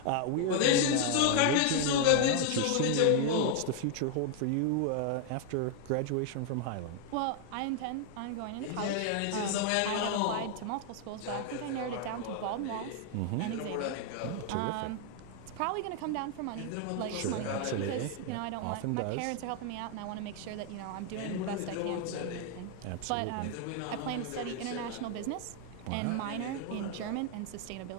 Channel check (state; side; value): different; both; correlation 0.00